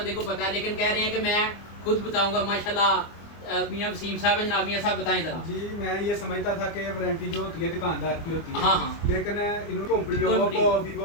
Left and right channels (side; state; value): right; late; 24 ms